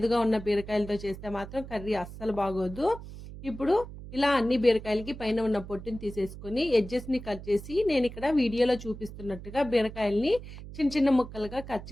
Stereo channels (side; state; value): right; noise; hum, 13 dB below the sound